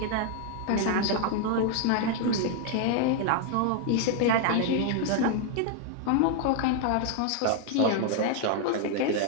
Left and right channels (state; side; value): different; both; correlation 0.00